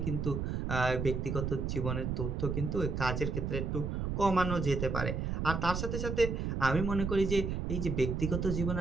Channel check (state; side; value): noise; right; rumble, 2 dB below the sound